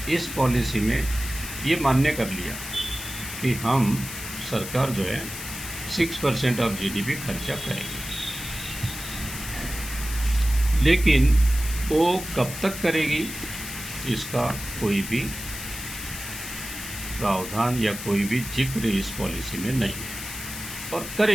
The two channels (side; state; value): left; noise; hiss, 9 dB below the sound